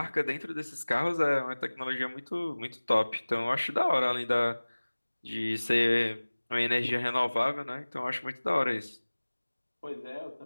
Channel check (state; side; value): inverted; both; correlation -1.00